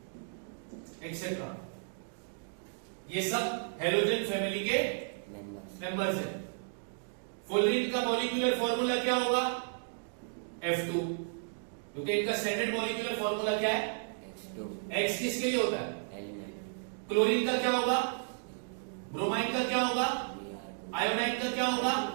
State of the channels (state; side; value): silent; left; digital silence